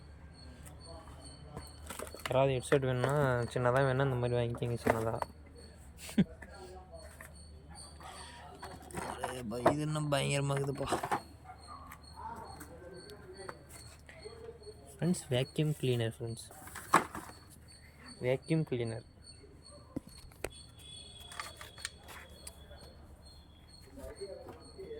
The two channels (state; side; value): identical; both; correlation 1.00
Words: யாராவது ஹெட்செட் வேணும்னா சின்னதாக வேணால் இந்த மாதிரி வாங்கிக்கிங்க. சின்னதாக இது இன்னும் பயங்கரமாகுதுப்பா. Friends, vacuum cleaner. Friends, vacuum cleaner.